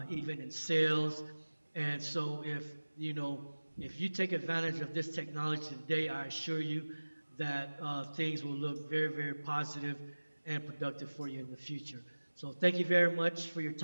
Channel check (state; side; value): inverted; both; correlation -1.00